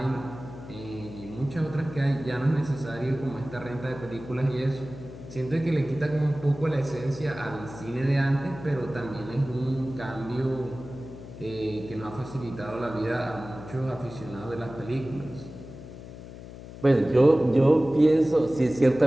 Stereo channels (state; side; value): noise; left; hum, 14 dB below the sound